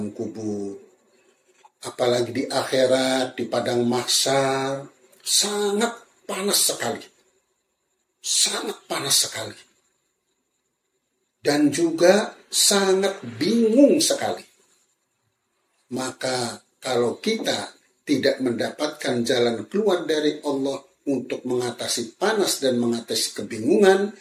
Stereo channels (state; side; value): identical; both; correlation 1.00